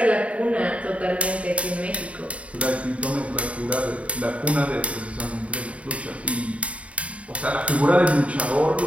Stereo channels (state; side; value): late; left; 0.065 ms